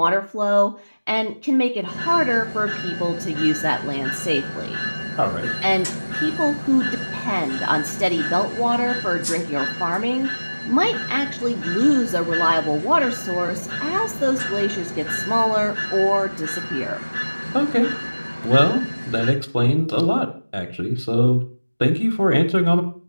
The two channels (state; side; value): inverted; both; correlation -1.00